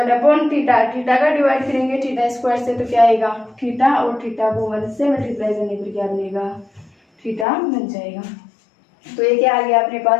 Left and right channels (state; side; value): drops out; right; at 7.5 s